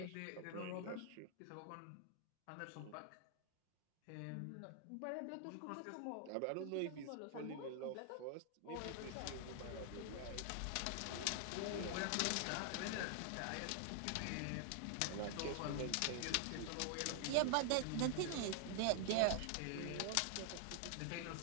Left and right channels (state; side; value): different; both; correlation 0.00